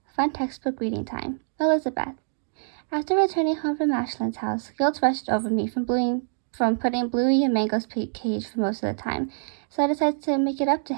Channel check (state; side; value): silent; left; digital silence